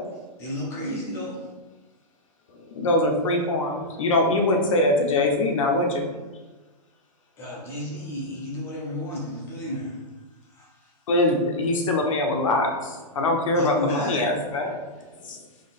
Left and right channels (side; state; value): both; normal; correlation -0.09